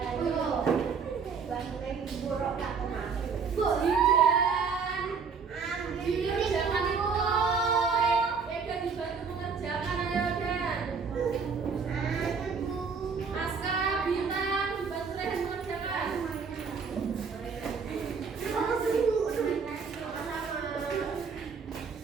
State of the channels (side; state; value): left; quieter; 5.6 dB